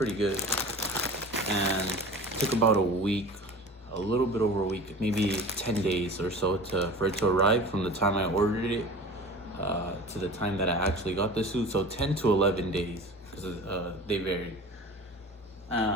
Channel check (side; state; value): both; normal; correlation 0.37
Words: good, and it took about a week, a little bit over a week, maybe 10 days or so for it to arrive from the time I ordered it to the time that I actually got the suit. So 10 to 11 days, because they varied.